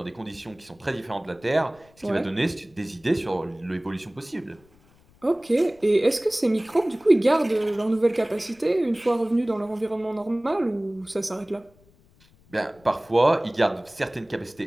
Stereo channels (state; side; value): noise; left; rumble, 30 dB below the sound